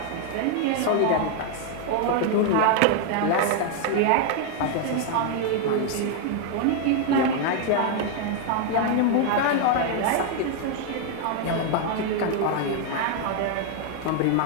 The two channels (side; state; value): both; different; correlation 0.00